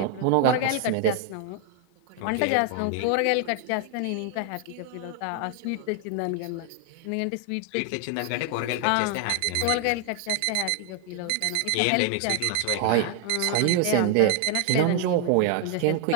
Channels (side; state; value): both; different; correlation 0.00